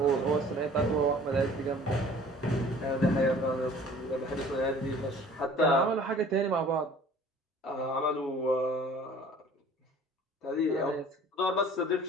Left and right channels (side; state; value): both; normal; correlation 0.49